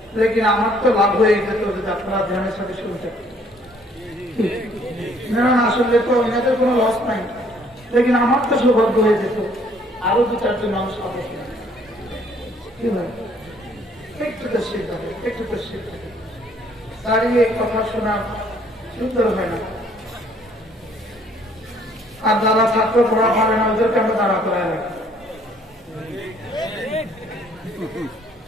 লেকিন আমার তো লাভ হয়ে যেত যদি আপনারা ধ্যানের সাথে শুনতেন না শুনলে তো এনাদের কোনো লস নাই লেকিন আমার তো সৌভাগ্য হয়ে যেত আরো দু চারজন মানুষ হবে কি হয় একটু তো শীত হবে একটু তো শীত হবে দাঁড়িয়ে কথা শোনা সুন্দর হয় না আর যারা ছাত্র পড়া পারে না ওদেরকে আমরা দাঁড়া করায় রাখি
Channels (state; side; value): normal; both; correlation 0.62